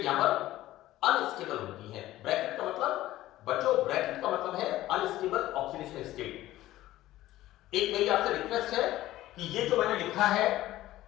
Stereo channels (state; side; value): quieter; right; 15.3 dB